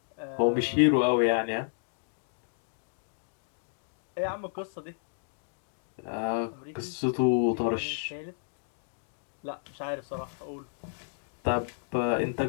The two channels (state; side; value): silent; right; digital silence